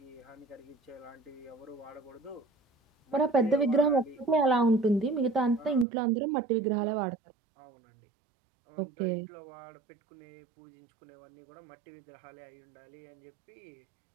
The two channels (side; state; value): left; drops out; at 5.9 s